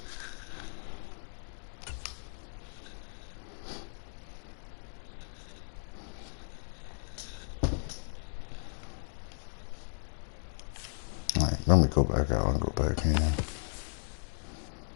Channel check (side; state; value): right; silent; digital silence